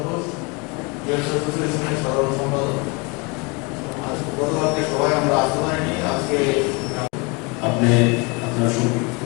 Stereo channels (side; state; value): right; quieter; 29.3 dB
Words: ঘোষ, ইউএস অ্যাসোসিয়েশনের সাধারণ সম্পাদক। আজ গতকালকে সবাই আমরা আসতে পারিনি, আজকে আপনি আপনার